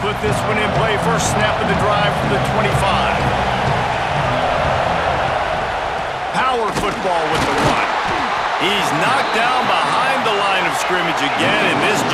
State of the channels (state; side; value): identical; both; correlation 1.00